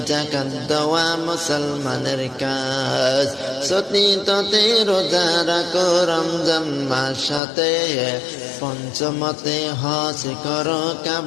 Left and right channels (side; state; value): right; drops out; at 7.4 s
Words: যাকাত দেওয়া মুসলমানের কাজ। চতুর্থতে রোজা রাখো রমজান মাসেতে, পঞ্চমতে হজ করো